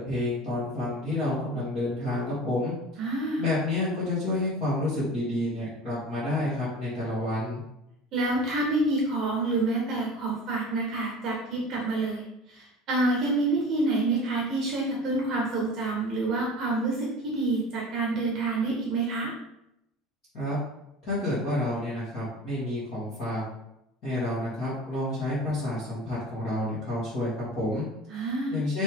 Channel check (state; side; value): normal; both; correlation 0.38